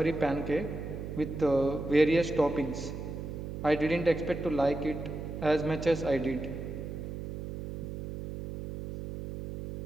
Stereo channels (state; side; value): noise; right; hum, 7 dB below the sound